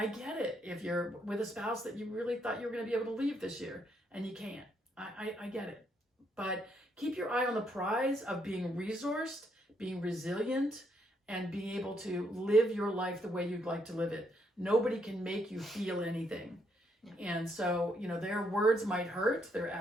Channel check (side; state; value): both; normal; correlation 0.74